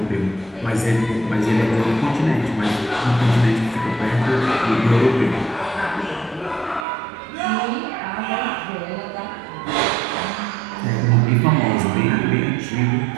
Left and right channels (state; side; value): drops out; left; at 6.9 s